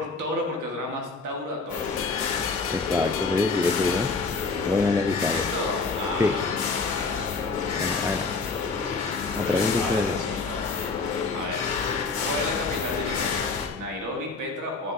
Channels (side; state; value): right; quieter; 4.0 dB